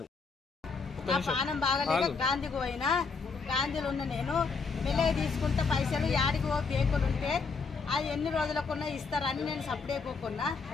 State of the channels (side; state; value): right; quieter; 4.8 dB